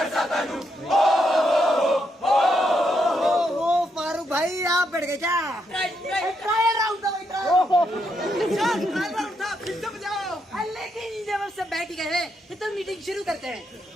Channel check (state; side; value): normal; both; correlation 0.79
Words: फारूक भाई आप बैठ गए क्या? ट्रायल राउंड था भाई, ट्रायल राउंड था, फिर से बजाओ। लेकिन जब सब बैठ गए तो मीटिंग शुरू करते हैं।